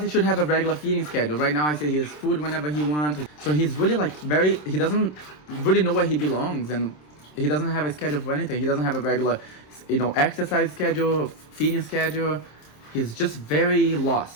he should have a regular feeding schedule. Right now, I say he has food whenever he wants. So he's really he doesn't really know where he belongs, and he doesn't have a schedule for anything. He doesn't have a regular, exercise schedule, feeding schedule. He's just very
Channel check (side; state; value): right; late; 27 ms